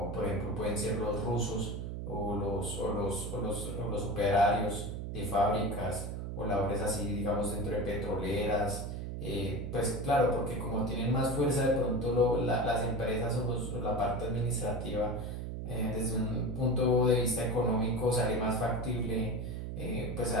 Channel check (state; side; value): noise; right; hum, 5 dB below the sound